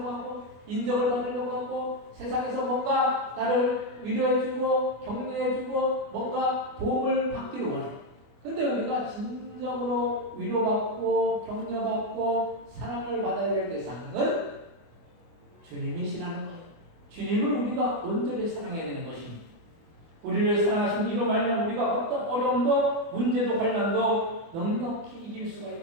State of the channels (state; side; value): late; left; 24 ms